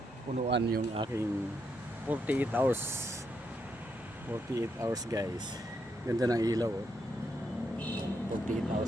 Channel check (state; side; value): normal; both; correlation 0.79